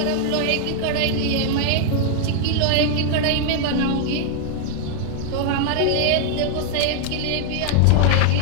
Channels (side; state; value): both; different; correlation 0.00